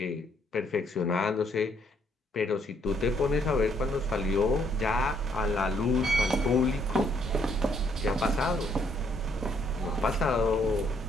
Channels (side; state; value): both; normal; correlation 0.69